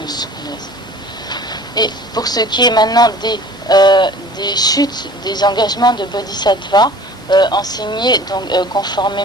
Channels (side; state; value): both; normal; correlation 0.46